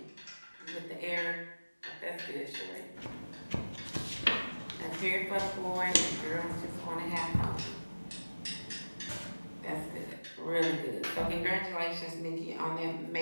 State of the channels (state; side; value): inverted; both; correlation -1.00